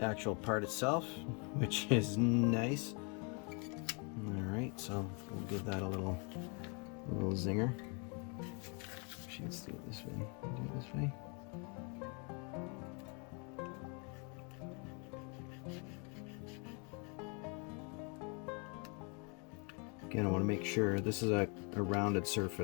part itself, which is nice. All right, so we'll give that a little zinger. Actually, let's do it this way. Do it this way. Again, I want to make sure this is a rounded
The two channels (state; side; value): quieter; right; 35.0 dB